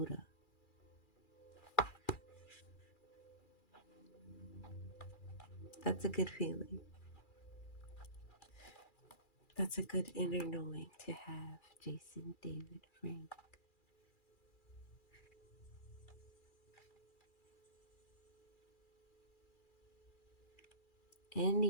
That's a good feeling. That's a good inner knowing to have, Jason David Frank.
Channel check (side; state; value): right; late; 2.4 ms